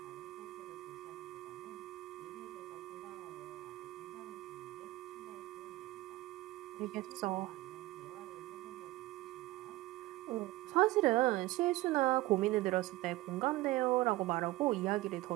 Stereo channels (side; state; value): left; quieter; 18.8 dB